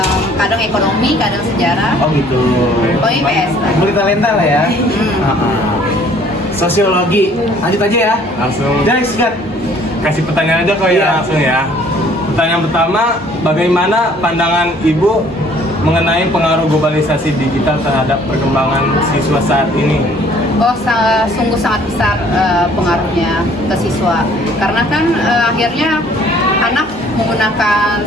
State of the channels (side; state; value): both; normal; correlation 0.57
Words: kadang ekonomi, kadang sejarah. Oh gitu. Pokoknya IPS lah. Multitalenta lah ya. Sosiologi. Lanjut aja ya. Langsung Jadi sikat. kasih pertanyaan aja kok Iya. ya langsung ya. Pertanyaan pertama, bagaimana pandangan Ibu mengenai pengaruh globalisasi digital terhadap perkembangan siswa saat ini? Oh, sungguh sangat besar pengaruhnya ke siswa. Karena kan akhirnya anak menggunakan